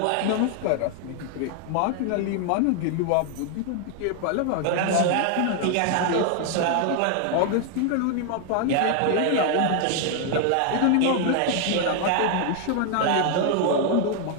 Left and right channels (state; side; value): different; both; correlation 0.00